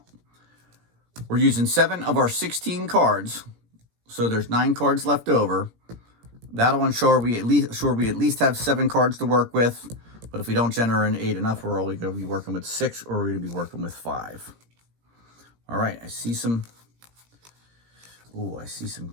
We're using 7 of our 16 cards, so there's 9 cards left over. That'll ensure we at least have 7 cards to work with. But if we don't generate enough, we're only going to be working with 6, or we're going to be working with 5. All right, I see some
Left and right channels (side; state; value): left; late; 17 ms